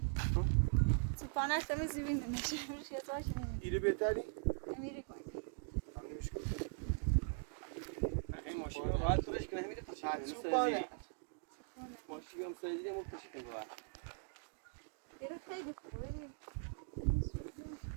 تو پانش تمیزی بینه میشه میشه داشت ایره بهتری؟ نمیری کنی همینش کن این ماشین رو راحت فرش کنه نمیده پاچه تو پانه ماشین بیام سازی کنم پاچه کنم راحت بیره خیلی خوبه ببین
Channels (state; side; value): silent; left; digital silence